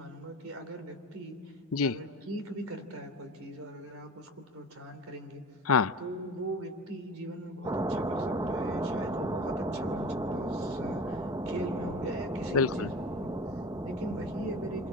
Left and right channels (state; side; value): normal; both; correlation 0.34